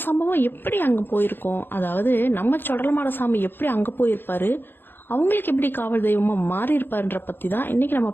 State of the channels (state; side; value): late; right; 0.10 ms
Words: சம்பவம் எப்படி அங்கே போயிருக்கோம்? அதாவது நம்ம சொடலமாடசாமி எப்படி அங்கே போயிருப்பாரு, அவங்களுக்கு எப்படி காவல் தெய்வமாக மாறி இருப்பாருன்ற பற்றி தான் இன்றைக்கி நம்ம